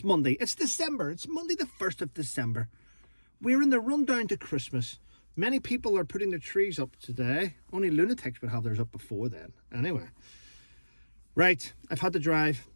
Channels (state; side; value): inverted; both; correlation -1.00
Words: Monday. It's December. It's Monday the 1st of December. We're in the rundown to Christmas. Many people are putting their trees up today. Only lunatics would have theirs up before then. Anyway. Right, I've had to drive.